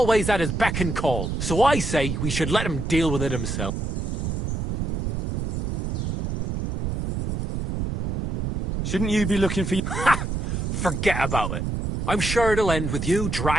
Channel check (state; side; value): noise; right; rumble, 2 dB below the sound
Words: at his beck and call. So I say we should let him deal with it himself. Shouldn't you be looking for... Ha! Forget about it. I'm sure it'll end with you